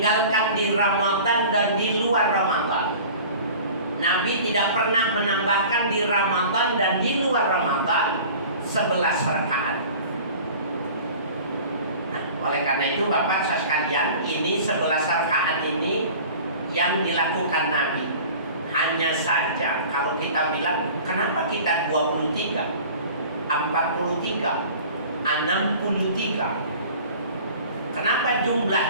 di Ramadan dan di luar Ramadan. Nabi tidak pernah menambahkan di Ramadan dan di luar Ramadan 11 rakaat. Oleh karena itu Bapak sekalian, ini 11 rakaat ini yang dilakukan Nabi. Hanya saja kalau kita bilang, kenapa kita 23, 43, 63? Kenapa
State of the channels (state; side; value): inverted; both; correlation -0.43